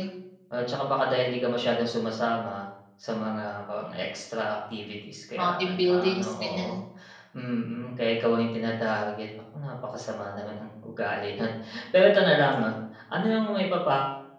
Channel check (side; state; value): both; identical; correlation 1.00